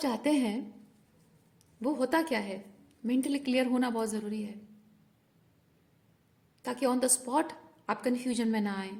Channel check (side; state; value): both; identical; correlation 1.00